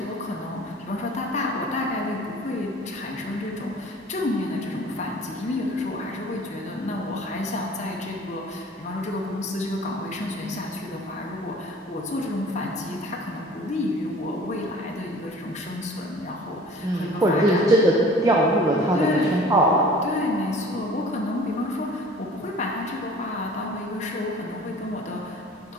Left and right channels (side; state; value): both; normal; correlation 0.47